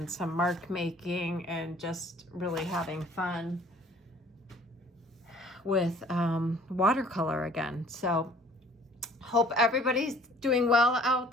some mark making, and just really having fun with watercolor again. So hope everybody's doing well out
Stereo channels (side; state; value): both; normal; correlation 0.53